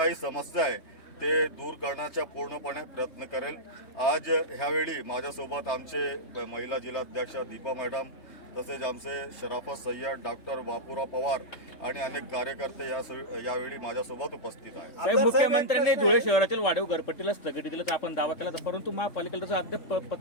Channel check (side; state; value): right; late; 3.2 ms